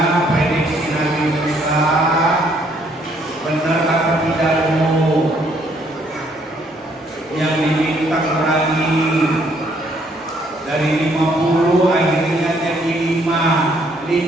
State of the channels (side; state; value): both; normal; correlation 0.67